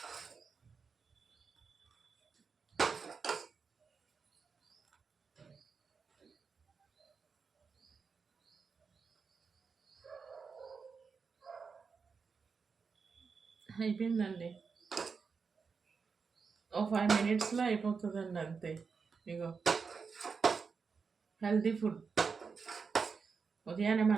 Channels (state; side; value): quieter; left; 5.3 dB